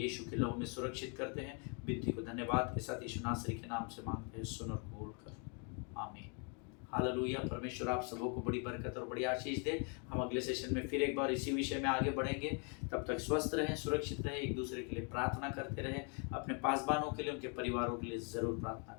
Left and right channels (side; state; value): right; quieter; 38.0 dB